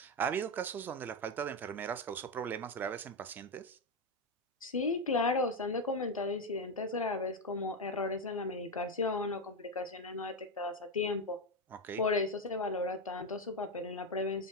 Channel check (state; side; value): normal; both; correlation 0.09